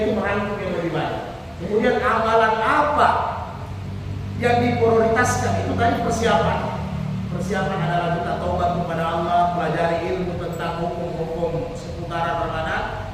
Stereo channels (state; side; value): identical; both; correlation 1.00